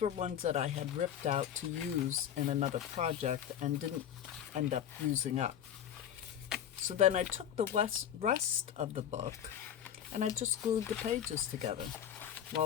ones that I had ripped out to use in another project and didn't end up using up. So then I took the rest of the book and I just glued the pages together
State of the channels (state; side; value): quieter; right; 9.7 dB